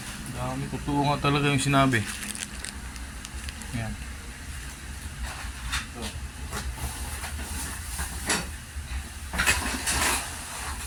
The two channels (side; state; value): both; identical; correlation 1.00